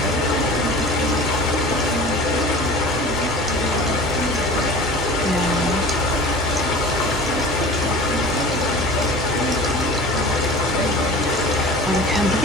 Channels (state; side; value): normal; both; correlation 0.39